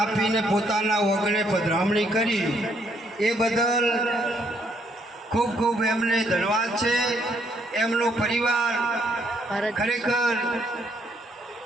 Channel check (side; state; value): both; normal; correlation 0.71